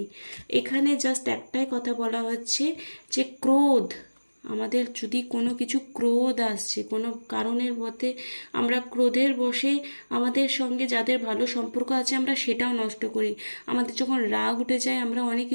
এখানে জাস্ট একটাই কথা বলা হচ্ছে যে ক্রোধ, আমাদের যদি কোনো কিছু ক্রোধ আসছে কোনো কারণের মধ্যে, আমরা ক্রোধের বশে আমাদের সঙ্গে যাদের ভালো সম্পর্ক আছে আমরা সেটাও নষ্ট করি। আমাদের যখন রাগ উঠে যায় আমরা অনেক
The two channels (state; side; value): inverted; both; correlation -1.00